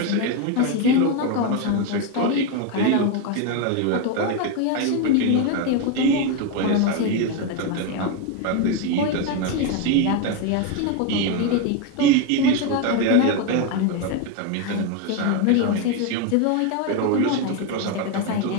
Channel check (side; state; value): both; different; correlation 0.02